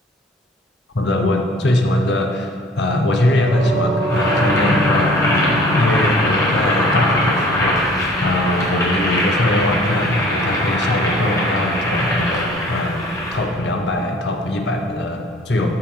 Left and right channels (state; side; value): normal; both; correlation 0.52